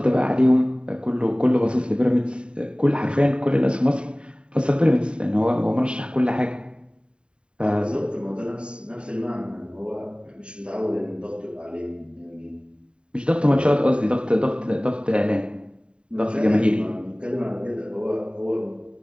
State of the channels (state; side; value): late; left; 0.052 ms